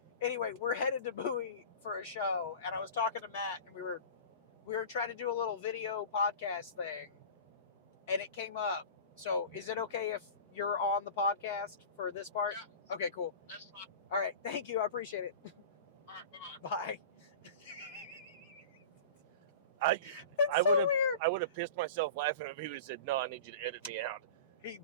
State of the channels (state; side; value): inverted; both; correlation -0.35